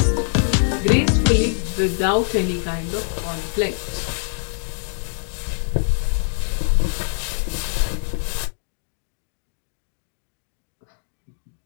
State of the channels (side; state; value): right; silent; digital silence